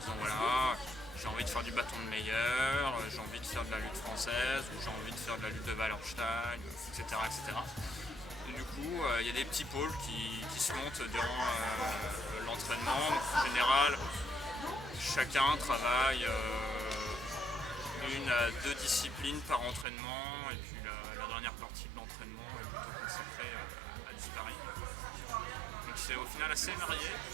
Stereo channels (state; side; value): drops out; left; at 19.9 s